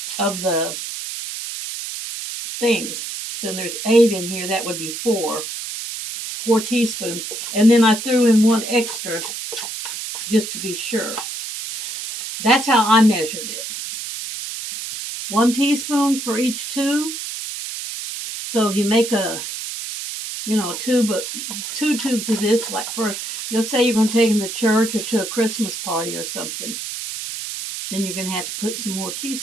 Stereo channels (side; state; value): right; noise; hiss, 7 dB below the sound